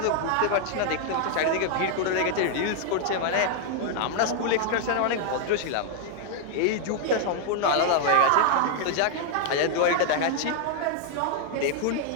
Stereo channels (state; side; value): different; both; correlation 0.00